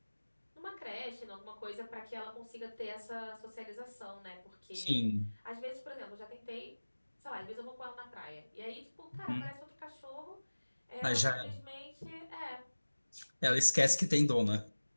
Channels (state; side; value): inverted; both; correlation -1.00